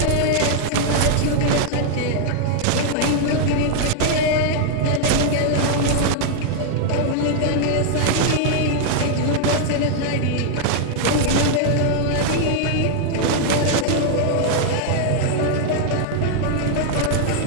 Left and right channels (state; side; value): different; both; correlation 0.00